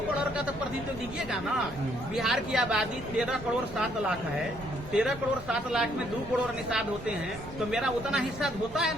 करोड़ का तो प्रतिनिधित्व दीजिएगा ना। बिहार की आबादी 13 करोड़ 7 लाख है, 13 करोड़ 7 लाख में 2 करोड़ निषाद होते हैं, तो मेरा उतना हिस्सा होता है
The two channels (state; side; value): noise; right; rumble, 16 dB below the sound